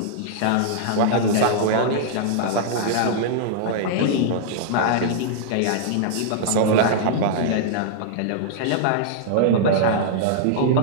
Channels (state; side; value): different; both; correlation -0.01